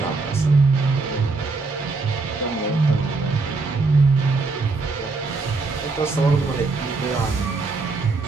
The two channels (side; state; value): left; quieter; 3.9 dB